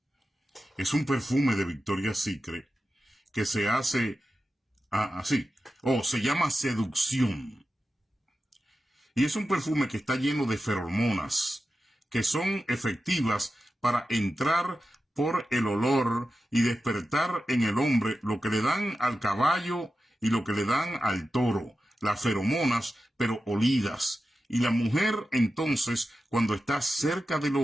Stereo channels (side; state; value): both; normal; correlation 0.92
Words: Es un perfume de Victoria's Secret que se hace así. Se llama Seducción. Y es un perfume que está lleno de feromonas que son efectivas para entrar por el olor y despertar en el hombre lo que le dan al caballo y lo que le dan al toro. Las feromonas, pero olidas. Y la mujer, entonces, cuando está cerca del